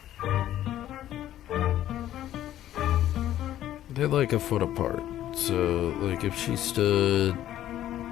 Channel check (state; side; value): quieter; right; 12.5 dB